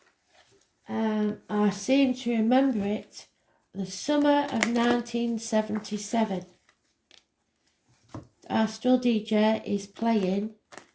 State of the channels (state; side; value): identical; both; correlation 1.00